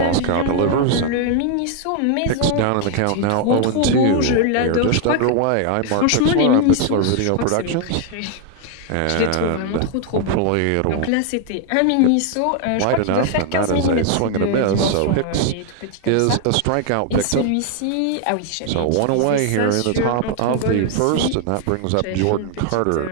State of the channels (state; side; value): different; both; correlation 0.00